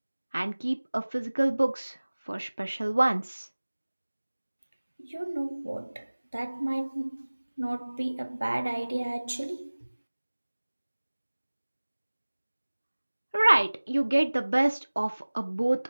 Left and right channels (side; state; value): both; inverted; correlation -1.00